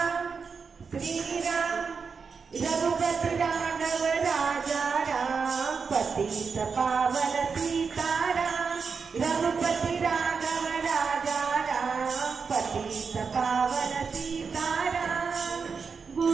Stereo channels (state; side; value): quieter; left; 5.4 dB